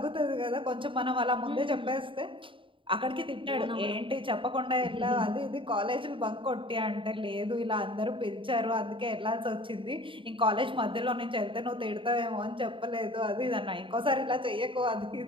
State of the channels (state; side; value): late; left; 0.25 ms